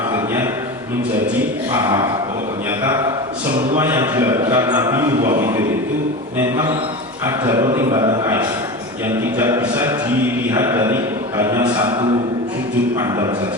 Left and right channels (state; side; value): normal; both; correlation 0.27